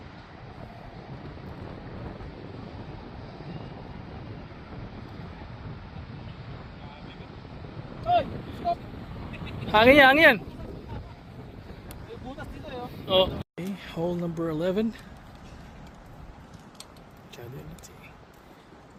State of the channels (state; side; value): identical; both; correlation 1.00